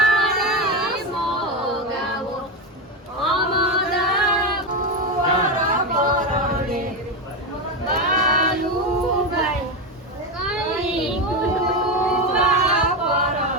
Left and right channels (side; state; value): both; normal; correlation 0.12